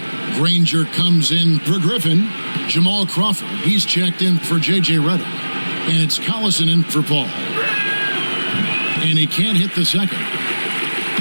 Granger comes in for Griffin. Jamal Crawford, he's checked in for J.J. Redick. And it's Collison in for Paul. And he can't hit the second.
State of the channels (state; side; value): inverted; both; correlation -1.00